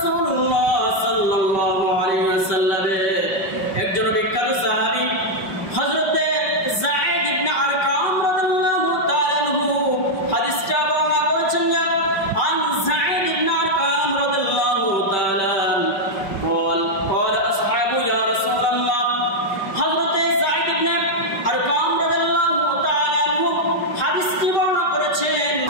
সাল্লাল্লাহু আলাইহি ওয়াসাল্লামের একজন বিখ্যাত সাহাবী হযরত যায়েদ ইবনে আরকাম রাদিয়াল্লাহু তাআলা আনহু হাদিসটা বর্ণনা করেছেন। আন যায়েদ ইবনে আরকাম রাদিয়াল্লাহু তাআলা قال اصحاب يا رسول الله হযরত যায়েদ ইবনে আরকাম রাদিয়াল্লাহু তাআলা আনহু হাদিসটি বর্ণনা করেছেন।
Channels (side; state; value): right; late; 5.2 ms